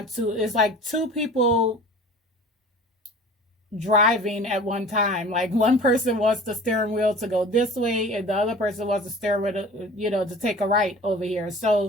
to. It's like two people driving at one time. Like one person wants the steering wheel to go this way and the other person wants the steering wheel to, to take a right over here.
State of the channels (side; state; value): both; normal; correlation 0.42